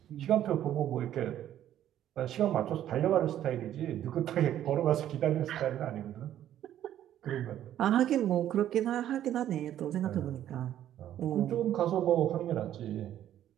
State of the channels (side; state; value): left; quieter; 11.5 dB